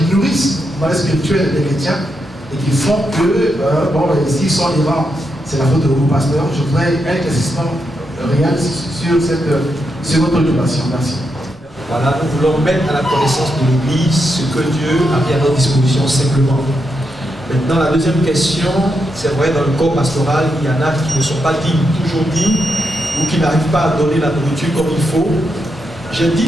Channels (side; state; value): both; normal; correlation 0.83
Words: nourrissent le mal spirituel des chrétiens et qui font que, s'ils sont errants, c'est la faute de vos pasteurs? Je voudrais un éclaircissement réel sur cette seconde préoccupation. Merci. Voilà, nous voulons mettre à la connaissance de l'Église ce que Dieu a mis à notre disposition simplement. Maintenant, la deuxième question, c'est vrai, dans le corps pastoral, il y en a qui ne sont pas dignes, toujours dignes, ou qui n'arrivent pas à donner la nourriture comme il faut. J'ai dit